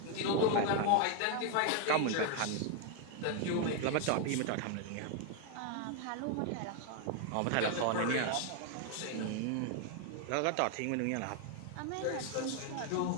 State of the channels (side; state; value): both; different; correlation 0.00